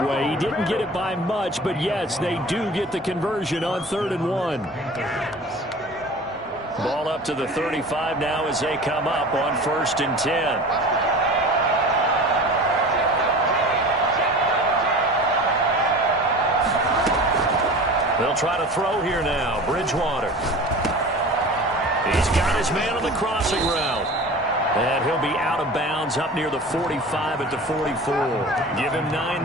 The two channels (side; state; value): both; normal; correlation 0.38